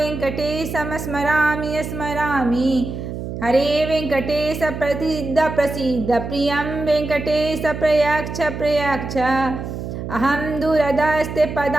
स्मरामि स्मरामि हरे वेङ्कटेश प्रसीद प्रसीद प्रियं वेङ्कटेश प्रयच्छ प्रयच्छ अहं दूरदस्ते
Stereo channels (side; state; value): right; noise; hum, 7 dB below the sound